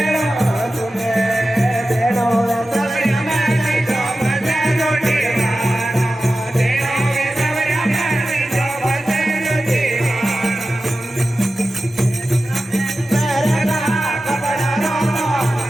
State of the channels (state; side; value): normal; both; correlation 0.94